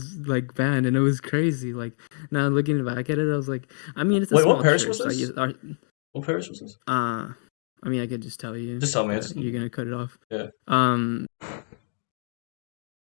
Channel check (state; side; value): silent; right; digital silence